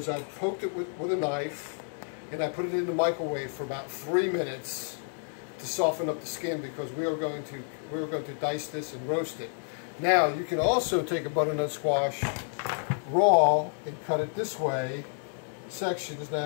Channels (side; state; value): right; silent; 57 dB below the other